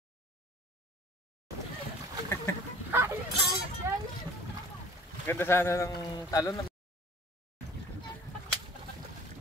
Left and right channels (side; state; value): both; normal; correlation 0.48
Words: Ganda sana ng talon.